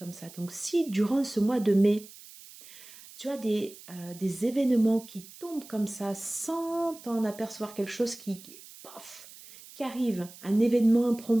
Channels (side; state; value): right; noise; hiss, 19 dB below the sound